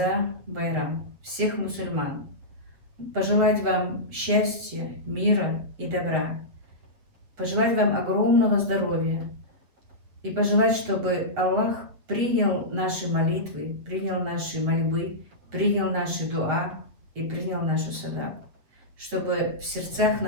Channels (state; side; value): late; left; 7.5 ms